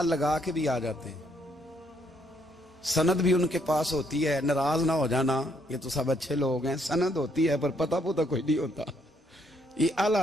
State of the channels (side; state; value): both; normal; correlation 0.71